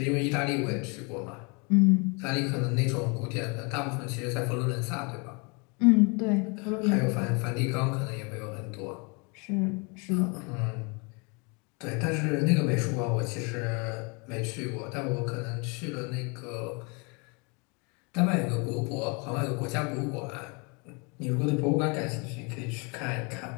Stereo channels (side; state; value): right; quieter; 31.8 dB